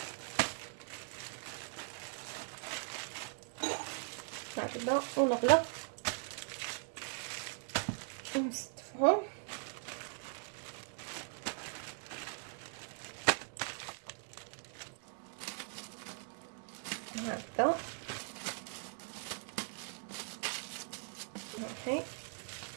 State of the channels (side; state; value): left; silent; 51 dB below the other